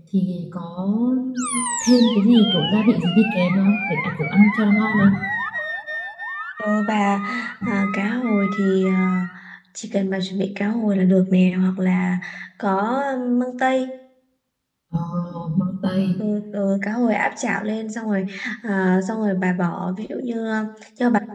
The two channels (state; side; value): identical; both; correlation 1.00